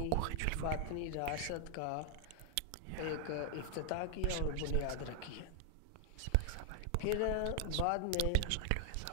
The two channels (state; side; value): different; both; correlation 0.00